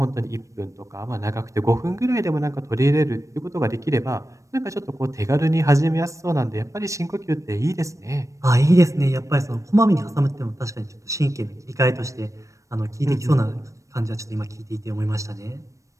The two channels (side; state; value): left; late; 0.15 ms